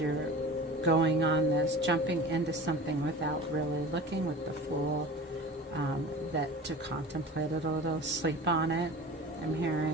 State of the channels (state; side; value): normal; both; correlation 0.37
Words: going on this, jumping into something without really looking, with the Fool, that to contemplate it a little, sleep on it. I'm